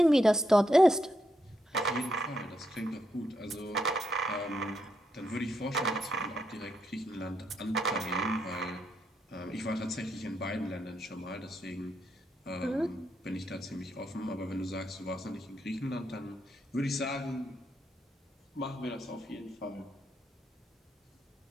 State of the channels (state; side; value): normal; both; correlation 0.80